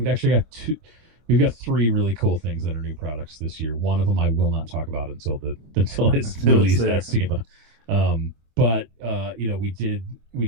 actually got we've got 3 really cool things that are new products this year. One of them I will not talk about until it's released at SEMA. But you know, we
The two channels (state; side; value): late; left; 25 ms